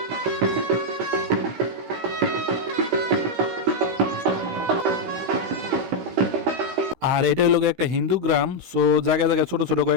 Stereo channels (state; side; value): late; left; 16 ms